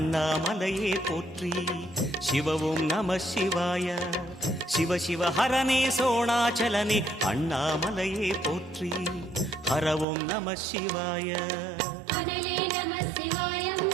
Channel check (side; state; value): left; drops out; at 10.1 s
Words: போற்றி. சிவவும் நம சிவாய. சிவ சிவ ஹரனே சோணாச்சலனே அண்ணாமலையே போற்றி. ஹரவும் நம சிவாய. அனலே நம சிவாயம்,